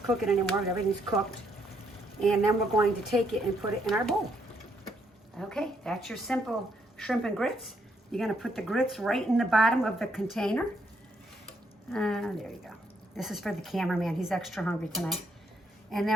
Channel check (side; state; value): both; normal; correlation 0.73